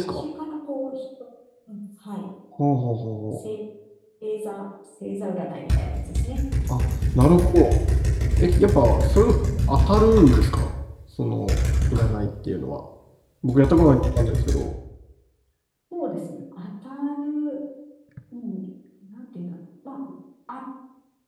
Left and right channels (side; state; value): both; identical; correlation 1.00